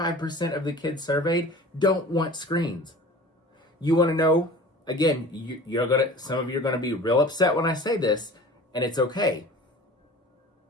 of the kids surveyed don't want screens. You want to know, again, some of you are going to be real upset when I say this, and it's okay.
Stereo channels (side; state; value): both; normal; correlation 0.41